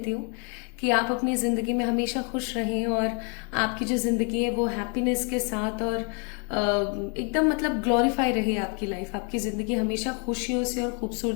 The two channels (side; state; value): right; quieter; 37.7 dB